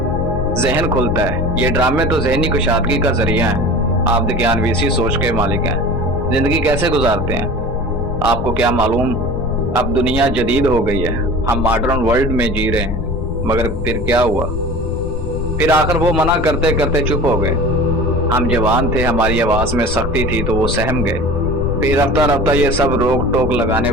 जहन खुलता है। ये ड्रामे तो जहनी कुशादगी का जरिया है। आप ज्ञानवीसी सोच के मालिक हैं, जिंदगी कैसे गुजारते हैं आपको क्या मालूम। अब दुनिया जदीद हो गई है, हम मॉडर्न वर्ल्ड में जी रहे हैं, मगर फिर क्या हुआ, फिर आखिर वो मना करते करते चुप हो गए। हम जवान थे, हमारी आवाज में सख्ती थी तो वो सहम गए। फिर रफ्ता रफ्ता ये सब रोक टोक लगाने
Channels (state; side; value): noise; left; rumble, 4 dB below the sound